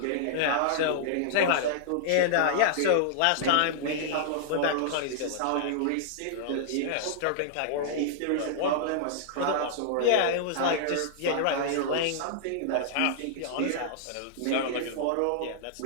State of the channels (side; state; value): both; different; correlation -0.02